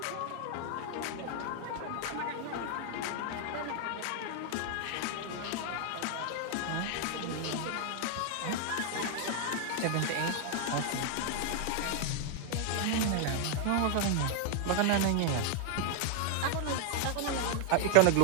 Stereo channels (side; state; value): both; different; correlation 0.00